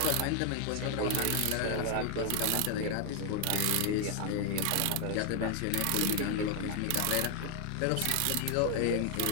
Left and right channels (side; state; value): both; different; correlation 0.00